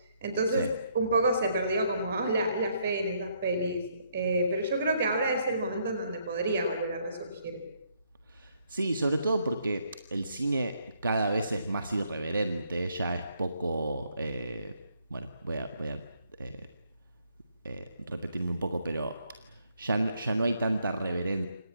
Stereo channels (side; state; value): both; inverted; correlation -0.71